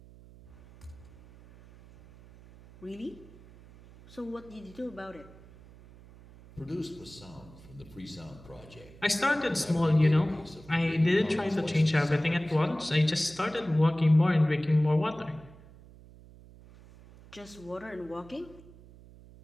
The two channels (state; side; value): noise; right; hum, 21 dB below the sound